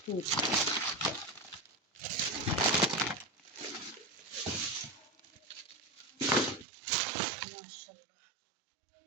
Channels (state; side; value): drops out; left; at 6.7 s